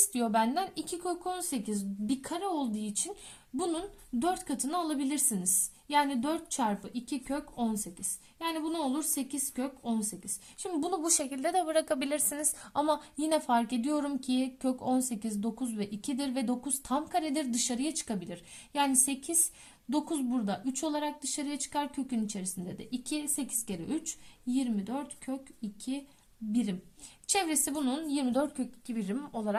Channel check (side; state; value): both; identical; correlation 1.00